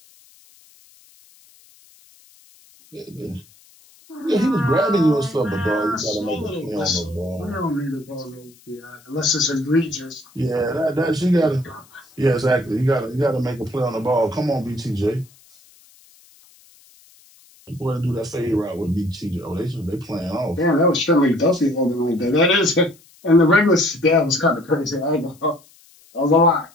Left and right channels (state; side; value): noise; left; hiss, 28 dB below the sound